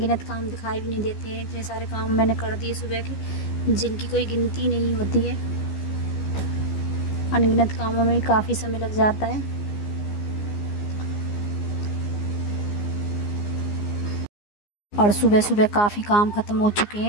काम दिखाई भी नहीं देते हैं, इतने सारे काम मैंने कर दिए सुबह के, जिनकी कोई गिनती नहीं होती है। अनगिनत कामों में भी काफ़ी समय लग जाता है। और सुबह सुबह काफ़ी काम ख़त्म हो चुके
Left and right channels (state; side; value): late; right; 15 ms